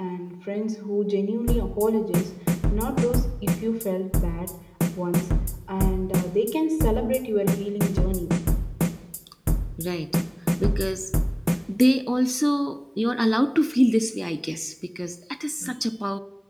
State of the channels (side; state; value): both; identical; correlation 1.00